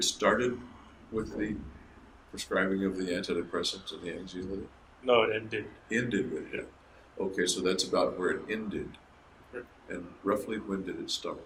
started with the prescribing of the antidepressants and the anxiolytic? No, it ended. Ended with it. Okay, so that's about where it ended. Right. And roughly when did it start?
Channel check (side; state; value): both; identical; correlation 1.00